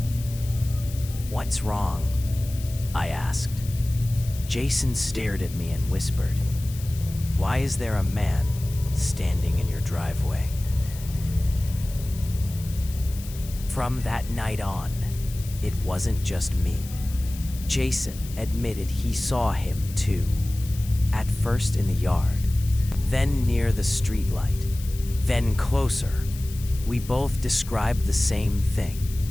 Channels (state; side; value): noise; left; hiss, 16 dB below the sound